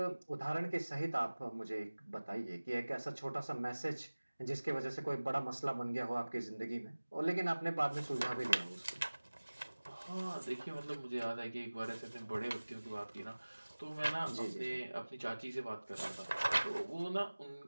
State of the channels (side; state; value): both; inverted; correlation -1.00